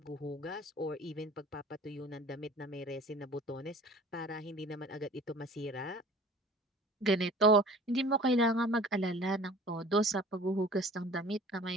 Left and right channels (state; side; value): normal; both; correlation 0.46